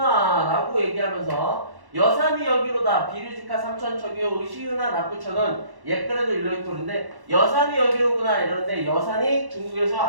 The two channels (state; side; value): late; left; 1.1 ms